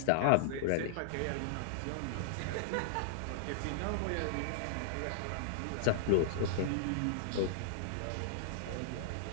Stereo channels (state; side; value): different; both; correlation -0.01